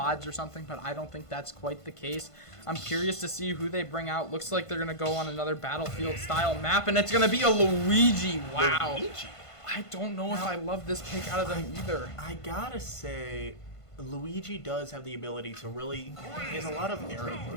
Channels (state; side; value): late; right; 1.5 ms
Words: or something, but I don't think that's quite the case. I'm curious to see who they bring out. Looks like they're going to go on another Battlefield-style map, and it's going to be a Luigi. Wow. Luigi? I don't know if I love this pick out of them either. I gotta say, Luigi does have the ability to really... He has a lot of aerial